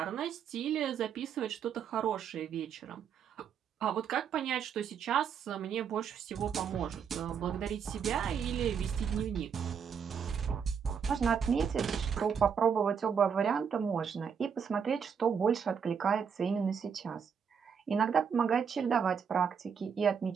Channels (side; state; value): left; quieter; 7.0 dB